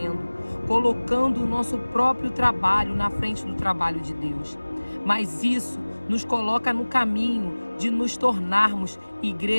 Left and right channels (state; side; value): inverted; both; correlation -1.00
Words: colocando o nosso próprio trabalho na frente do trabalho de Deus. Mas isso nos coloca no caminho de nos tornarmos